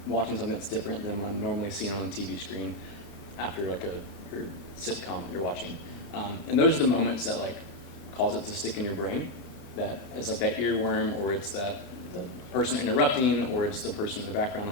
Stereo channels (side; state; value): right; late; 37 ms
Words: watching something that's different than what I'm normally seeing on the TV screen after like a sitcom you're watching. And those are the moments that like cause it to stick in your brain. That is like that earworm, or it's the person interrupting, or it's the person in the background